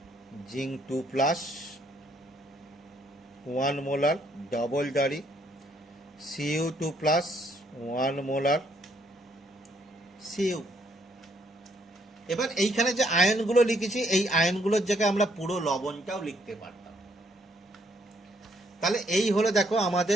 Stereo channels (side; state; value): both; normal; correlation 0.69